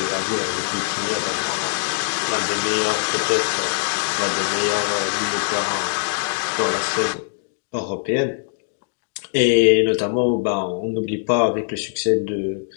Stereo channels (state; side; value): silent; right; digital silence